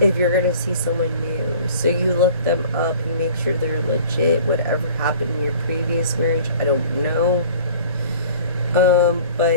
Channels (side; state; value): both; inverted; correlation -0.47